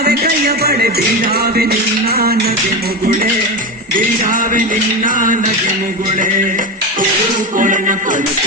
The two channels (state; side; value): normal; both; correlation 0.19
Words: ಕೈಯ ಬಳೆ ಬೀಳಾವೆ ನಿನ್ನ ನಗೆ ಮುಗುಳೆ ಬೀಳಾವೆ ನಿನ್ನ ನಗೆ ಮುಗುಳೆ ಕೋಲಣ್ಣ ಕೋಲು